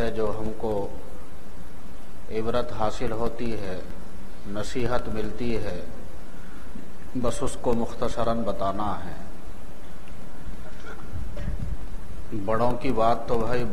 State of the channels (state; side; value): identical; both; correlation 1.00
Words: جو ہم کو عبرت حاصل ہوتی ہے، نصیحت ملتی ہے، بس اس کو مختصراً بتانا ہے۔ بڑوں کی بات تو بھائی